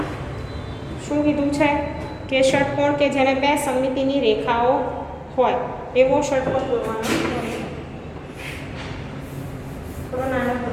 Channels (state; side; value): identical; both; correlation 1.00